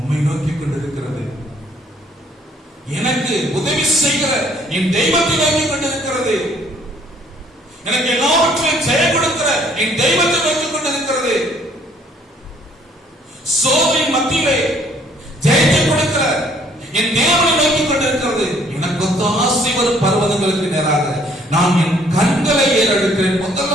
நோக்கி கொண்டிருக்கிறது. எனக்கு உதவி செய்கிற என் தெய்வத்தை நோக்கி கொண்டிருக்கிறது. எனக்கு எல்லாவற்றையும் ஜெயம் கொடுக்கிற என் தெய்வத்தை நோக்கி கொண்டிருக்கிறது. சோதனை மத்தியிலே ஜெயத்தை கொடுக்கிற என் தேவனை நோக்கி கொண்டிருக்கிறது. எனக்கு ஒத்தாசை வரும் பர்வதங்களுக்கு நேராக நான் என் கண்களை ஏறெடுக்கிறேன்.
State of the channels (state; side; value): normal; both; correlation 0.61